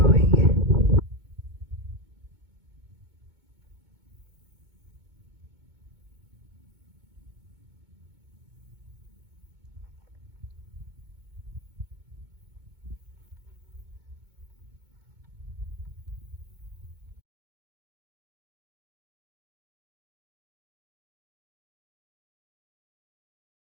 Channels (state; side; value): late; left; 2.2 ms